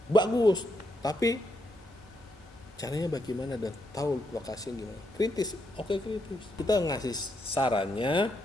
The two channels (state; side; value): normal; both; correlation 0.79